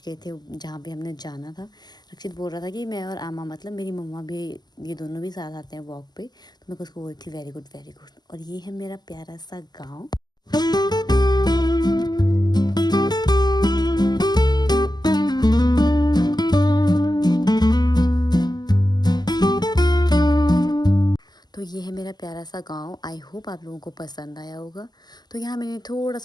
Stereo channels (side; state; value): right; late; 0.20 ms